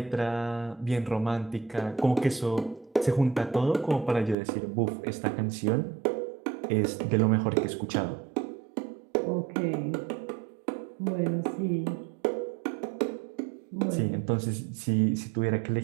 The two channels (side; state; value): left; drops out; at 4.4 s